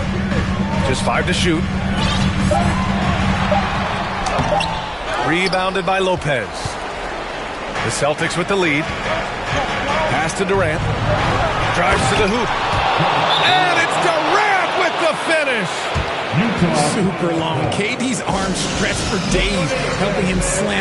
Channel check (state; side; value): identical; both; correlation 1.00